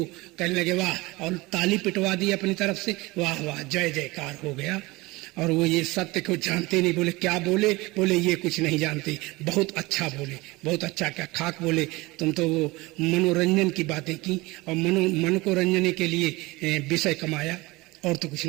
कहने लगे वाह, और ताली पिटवा दी अपनी तरफ से, वाह वाह जय जयकार हो गया। और वो ये सत्य को जानते नहीं। बोले क्या बोले? बोले ये कुछ नहीं जानते। बहुत अच्छा बोले, बहुत अच्छा, क्या खाक बोले। तुम तो वो मनोरंजन की बातें की और मन को रंजने के लिए विषय कमाया, और तो कुछ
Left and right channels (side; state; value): left; quieter; 22.0 dB